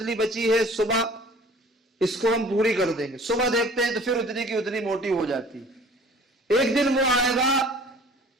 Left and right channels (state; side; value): normal; both; correlation 0.49